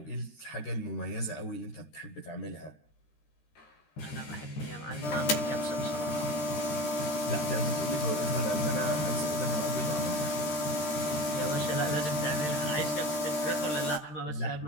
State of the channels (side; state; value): right; late; 13 ms